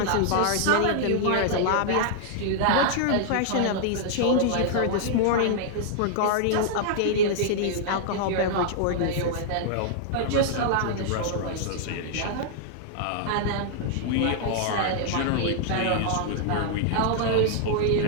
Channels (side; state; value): both; different; correlation -0.01